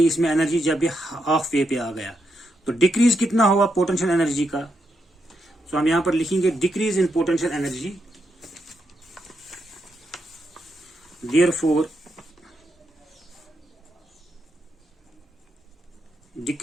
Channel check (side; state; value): both; normal; correlation 0.82